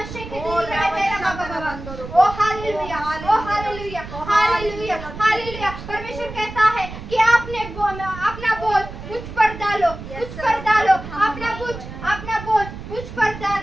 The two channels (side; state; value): right; noise; rumble, 11 dB below the sound